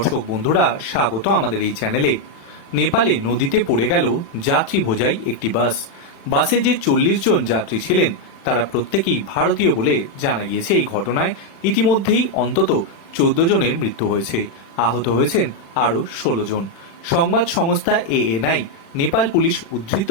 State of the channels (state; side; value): late; right; 36 ms